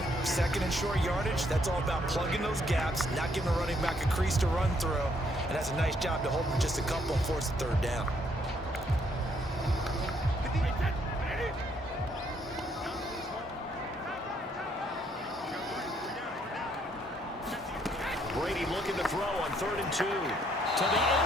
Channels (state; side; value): normal; both; correlation 0.70